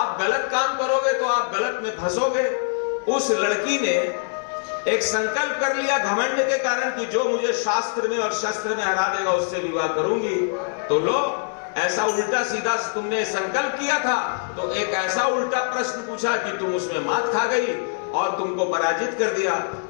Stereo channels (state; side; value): silent; right; 63 dB below the other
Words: गलत काम करोगे तो आप गलत में फंसोगे। उस लड़की ने एक संकल्प कर लिया घमंड के कारण कि जो मुझे शास्त्र में और शस्त्र में हरा देगा उससे विवाह करूंगी। तो लो, ऐसा उल्टा सीधा तुमने संकल्प किया था तो एक ऐसा उल्टा प्रश्न पूछा कि तुम उसमें मात खा गई और तुमको पराजित कर दिया।